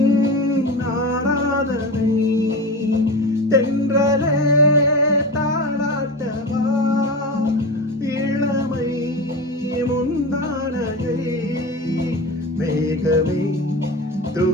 ஆராதனை தென்றலே தாளாட்டவா இளமை முந்தானையை மேகமே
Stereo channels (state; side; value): normal; both; correlation 0.26